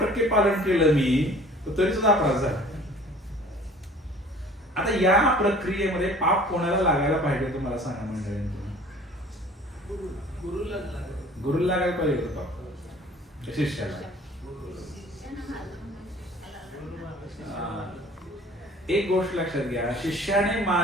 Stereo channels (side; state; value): both; normal; correlation 0.49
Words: पालन केलं मी, तर तरी सुद्धा अपराध झाला. आता या प्रक्रियेमध्ये पाप कोणाला लागायला पाहिजे तुम्हाला सांगा मंडळी? गुरुला लागायला पाहिजे होतं पाप, शिष्याला. एक गोष्ट लक्षात घ्या, शिष्याने